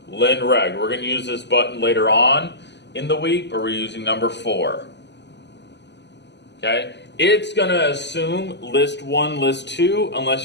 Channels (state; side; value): late; right; 0.50 ms